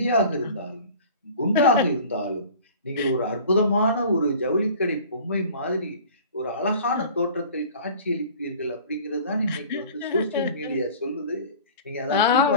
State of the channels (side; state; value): both; inverted; correlation -0.44